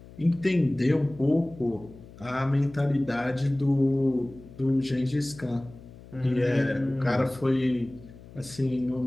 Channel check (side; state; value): left; noise; hum, 19 dB below the sound